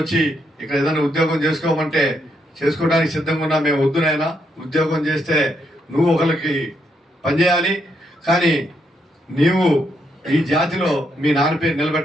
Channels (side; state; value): both; normal; correlation 0.77